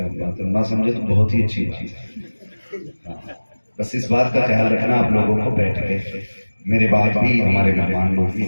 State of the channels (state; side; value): inverted; both; correlation -1.00